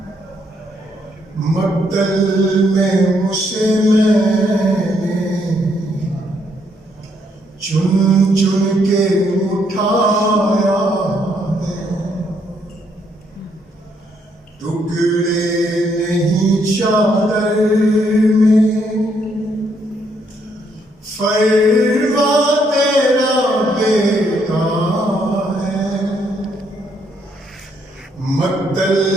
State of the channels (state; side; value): normal; both; correlation 0.73